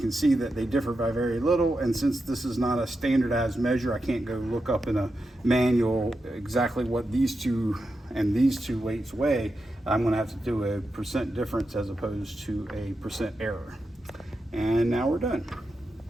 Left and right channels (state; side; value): normal; both; correlation 0.88